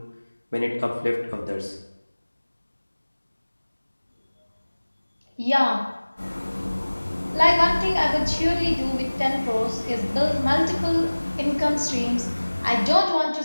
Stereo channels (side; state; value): both; inverted; correlation -1.00